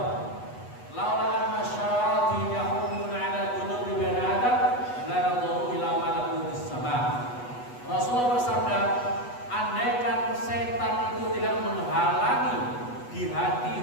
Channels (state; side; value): late; right; 8.1 ms